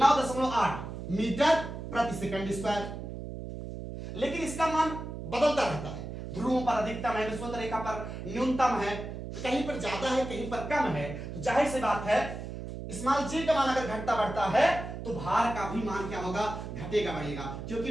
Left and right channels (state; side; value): noise; right; hum, 8 dB below the sound